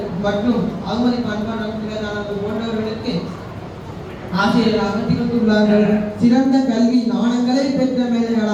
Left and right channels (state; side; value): identical; both; correlation 1.00